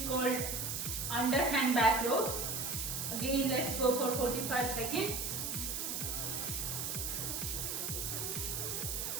called underhand back rows. Again, let's go for 45 seconds.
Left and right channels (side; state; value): right; noise; hiss, 2 dB below the sound